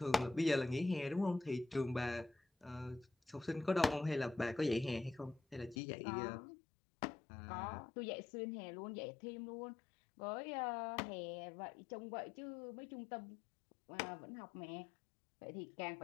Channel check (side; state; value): right; drops out; at 5.8 s